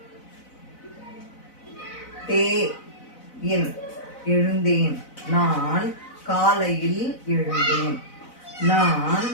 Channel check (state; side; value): late; right; 4.0 ms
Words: எழுந்தேன். நான் காலையில் எழுந்தேன். நான்